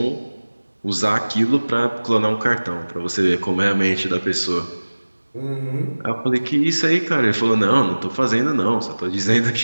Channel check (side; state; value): both; inverted; correlation -1.00